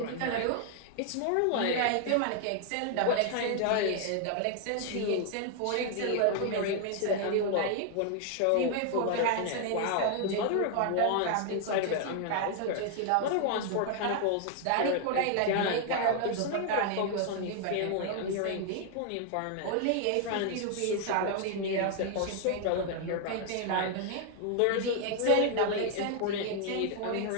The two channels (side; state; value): both; different; correlation 0.00